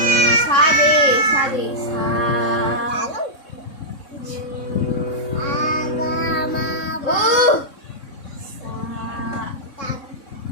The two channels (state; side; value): late; right; 3.6 ms